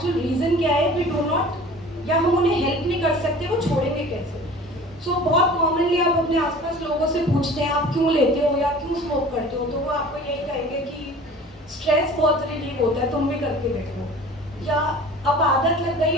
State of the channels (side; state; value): both; normal; correlation 0.43